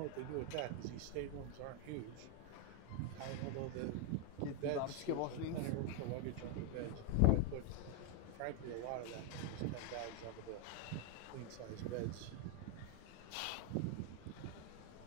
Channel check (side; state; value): both; different; correlation 0.01